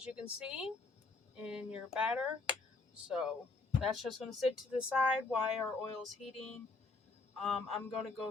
you can see in your batter. So that's just going to sit to the side while our oil is heating. I'm going to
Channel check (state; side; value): quieter; right; 3.6 dB